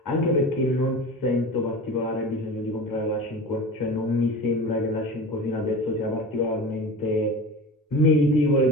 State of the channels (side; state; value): both; normal; correlation 0.32